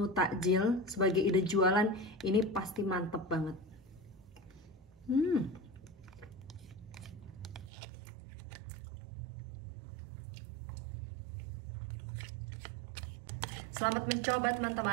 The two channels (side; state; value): left; drops out; at 7.7 s